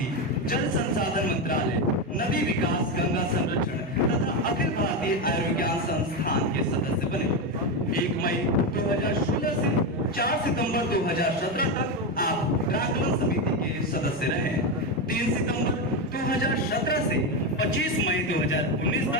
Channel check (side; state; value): both; normal; correlation 0.12